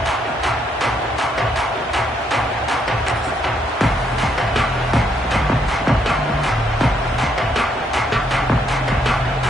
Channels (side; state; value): both; normal; correlation 0.73